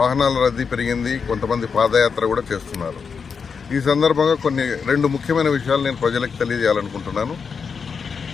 రద్దీ పెరిగింది. కొంతమంది పాదయాత్ర కూడా చేస్తున్నారు. ఈ సందర్భంగా రెండు ముఖ్యమైన విషయాలు నేను ప్రజలకు తెలియజేయాలనుకుంటున్నాను.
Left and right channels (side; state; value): right; quieter; 5.8 dB